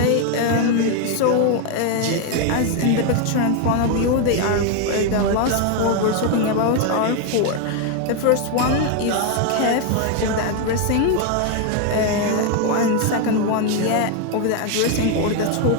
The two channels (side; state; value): both; different; correlation 0.01